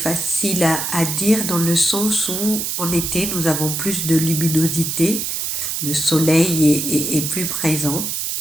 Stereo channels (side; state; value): right; noise; hiss, 2 dB below the sound